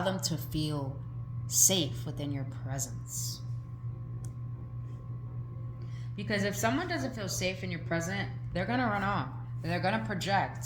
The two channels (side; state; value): both; identical; correlation 1.00